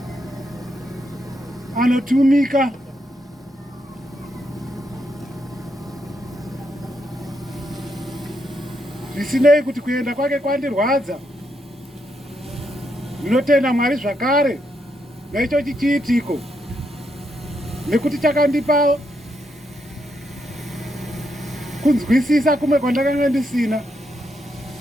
anotumika, zvisinei kuti kuenda kwake kwandirwadza. Ndinotenda Mwari zvakare naicho chiitiko, nekuti chakandipa kunzwisisa kumwe kwandakanga ndisina,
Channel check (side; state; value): both; normal; correlation 0.80